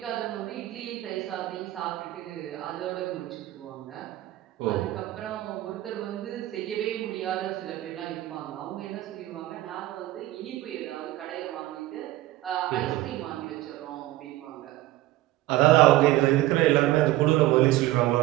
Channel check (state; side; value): quieter; left; 16.3 dB